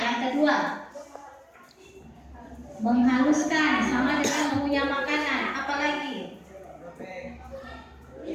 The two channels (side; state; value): both; identical; correlation 1.00